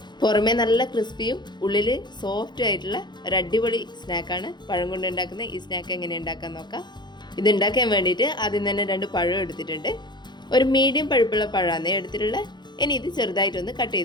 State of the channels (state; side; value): late; right; 0.21 ms